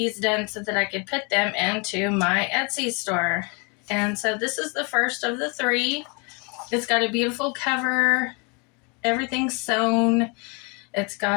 done so that I could put them into my Etsy store. And so this is the first of the 3. It's got a beautiful cover, everything's sewn. It's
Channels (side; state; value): right; quieter; 32.0 dB